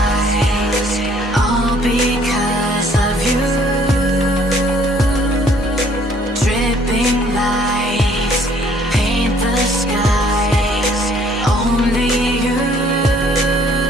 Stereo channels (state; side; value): normal; both; correlation 0.61